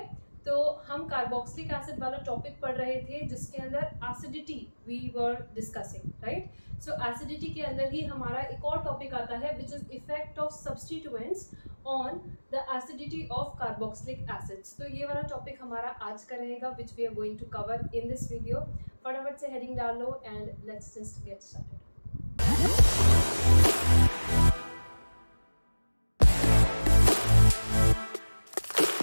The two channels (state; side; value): inverted; both; correlation -1.00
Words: तो हम कार्बोक्सिलिक एसिड वाला टॉपिक पढ़ रहे थे जिसके अंदर acidity we were discussing, right. So acidity के अंदर ही हमारा एक और टॉपिक आता है which is effect of substituents on the acidity of carboxylic acids. तो ये वाला टॉपिक हमारा आज का रहेगा which we are going to cover in this video. फटाफट से हेडिंग डाल लो and let's just get started.